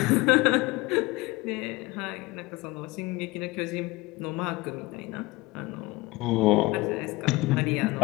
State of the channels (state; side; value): quieter; right; 20.9 dB